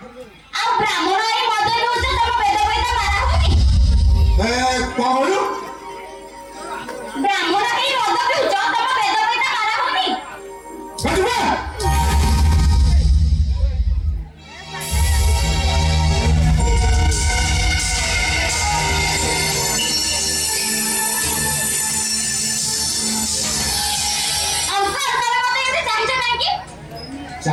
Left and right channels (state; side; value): identical; both; correlation 1.00